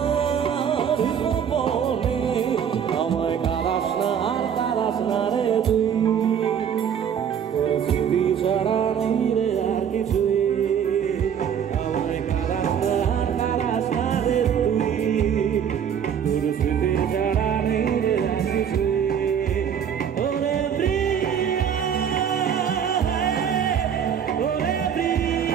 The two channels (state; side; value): quieter; left; 8.3 dB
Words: গোপনে, আমায় কারাস না আর কারাস না রে তুই, তোর স্মৃতি ছাড়া নেই রে আর কিছুই, আমায় কারাস না আর কারাস না রে তুই, তোর স্মৃতি ছাড়া নেই রে আর কিছুই।